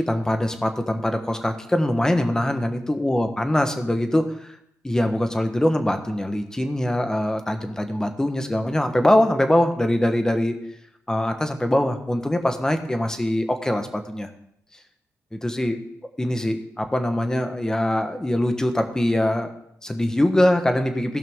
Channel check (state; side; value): normal; both; correlation 0.96